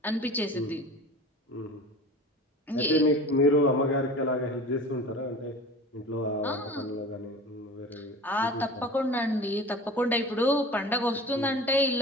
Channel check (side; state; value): both; normal; correlation 0.37